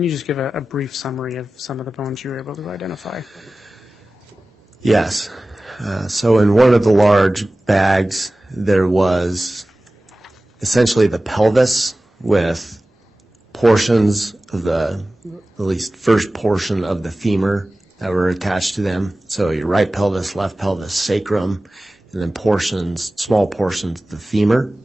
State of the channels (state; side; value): normal; both; correlation 0.97